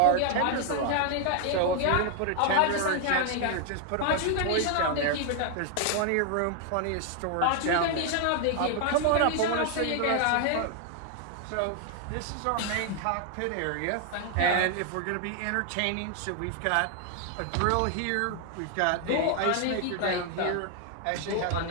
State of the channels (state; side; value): different; both; correlation 0.00